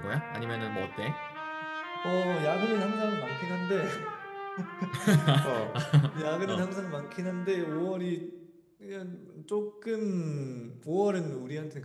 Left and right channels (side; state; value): both; identical; correlation 1.00